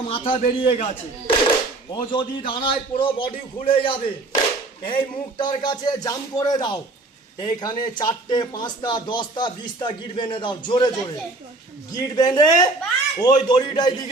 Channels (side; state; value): left; quieter; 3.1 dB